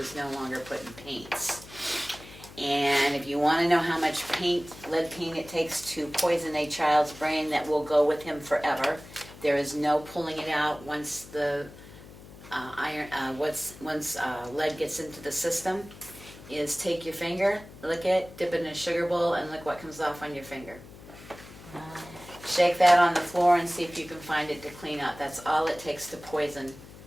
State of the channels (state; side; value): noise; left; hum, 18 dB below the sound